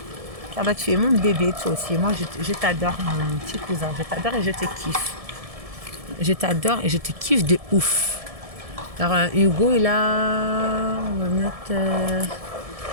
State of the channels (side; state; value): left; late; 1.7 ms